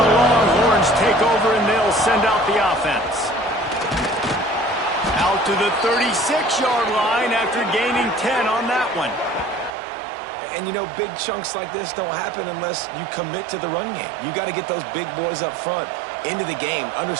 Longhorns take over, and they'll send out the offense. Out to the 36-yard line after gaining 10 on that one. And, you know, big chunks like this don't happen unless you commit to the run game. You got to get those big boys up front into the game,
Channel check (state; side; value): drops out; left; at 9.8 s